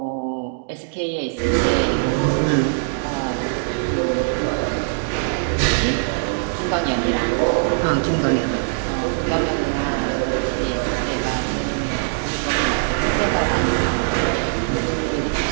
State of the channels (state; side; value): silent; left; digital silence